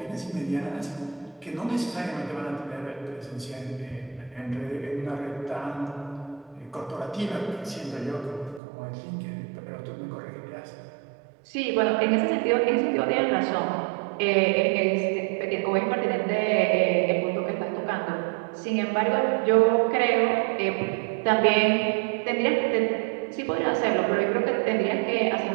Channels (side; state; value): left; drops out; at 8.6 s